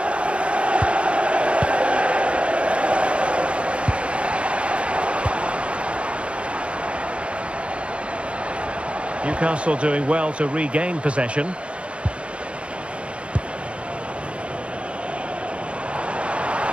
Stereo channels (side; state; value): left; late; 0.059 ms